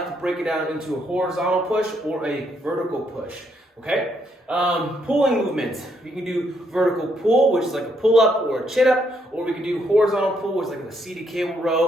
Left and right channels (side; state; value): both; normal; correlation 0.74